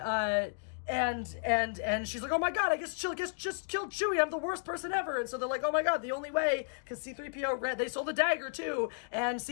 And she's like, oh my god, I guess just killed Chewie, I'm the worst person ever. And so they're like, oh my god, the only way, because C-3PO read, they sold a dagger too, and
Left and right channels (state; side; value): silent; right; digital silence